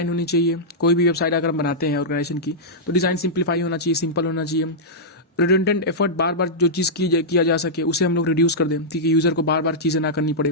होनी चाहिए। कोई भी वेबसाइट अगर हम बनाते हैं ऑर्गेनाइजेशन की तो डिज़ाइन सिंप्लीफाई होना चाहिए, सिंपल होना चाहिए। रिडंडेंट एफर्ट, बार बार जो चीज़ किया जा सके उसे हम लोग रिड्यूस कर दें, ठीक है, यूज़र को बार बार चीज़ें ना करनी पड़े।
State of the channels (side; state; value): both; normal; correlation -0.10